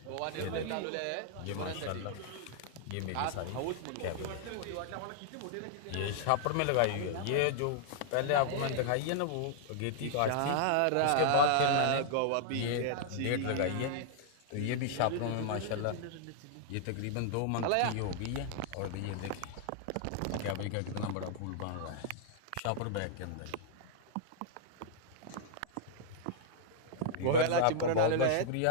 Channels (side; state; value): both; different; correlation -0.01